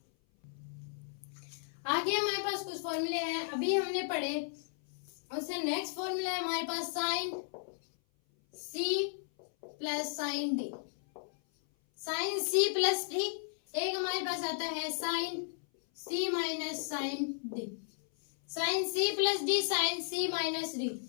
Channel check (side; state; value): right; silent; 55 dB below the other